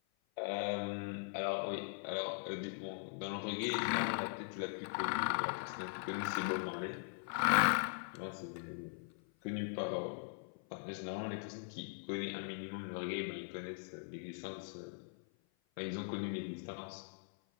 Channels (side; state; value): right; silent; 51 dB below the other